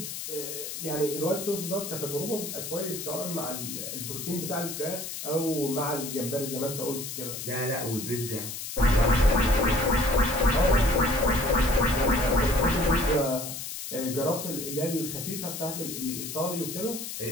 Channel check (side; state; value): left; noise; hiss, 7 dB below the sound